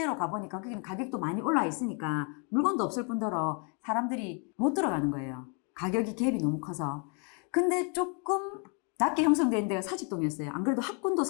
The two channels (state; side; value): quieter; right; 37.5 dB